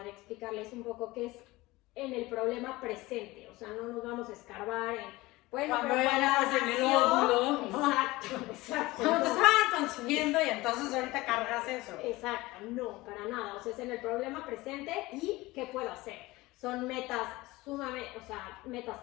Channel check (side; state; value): right; quieter; 20.2 dB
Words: explicarles un poco qué es en el problema presente, o sea, no nos vamos a escarbar en... Bueno, cuando eras en el óvulo, exacto. Cuando te estaban consumiendo y entonces ahorita cargas eso. Exacto, no, para nada. O sea, es en el problema presente y ¿qué puedo hacer? Son metas sumamente, o sea, metas